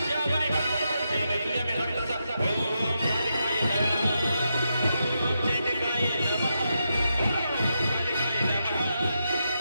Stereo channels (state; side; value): inverted; both; correlation -0.85